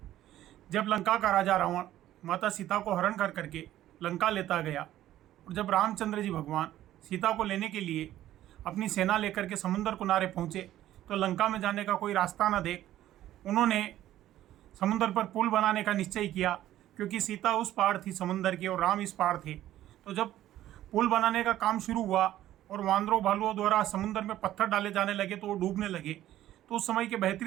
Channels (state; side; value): quieter; left; 13.4 dB